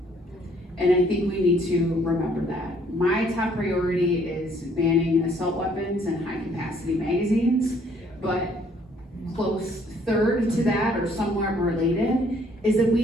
And I think we need to remember that. My top priority is banning assault weapons and high-capacity magazines, but close third to that, or somewhat related, is that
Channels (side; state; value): both; normal; correlation 0.63